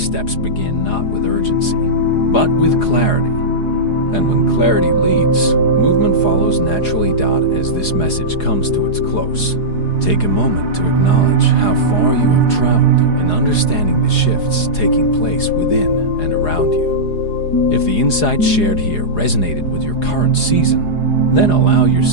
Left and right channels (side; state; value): right; late; 4.8 ms